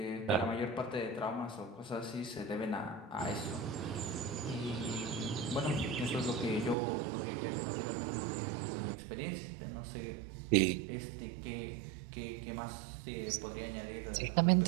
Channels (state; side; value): drops out; left; at 6.8 s